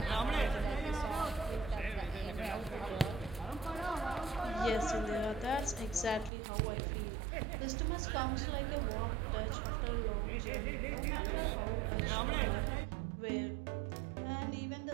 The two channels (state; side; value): drops out; left; at 6.3 s